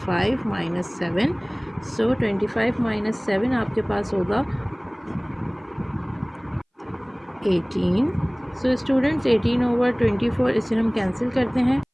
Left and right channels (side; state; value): both; identical; correlation 1.00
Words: - 7। सो 25 - 7 आपके पास होगा 18। सो स्टूडेंट्स 18/24 इसे हम कैंसिल करते हैं।